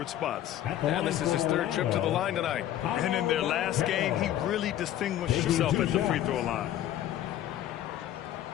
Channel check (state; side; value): quieter; right; 12.2 dB